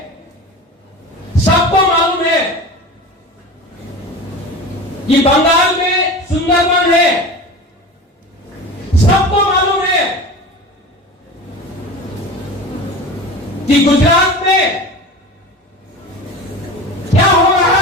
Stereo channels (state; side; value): normal; both; correlation 0.32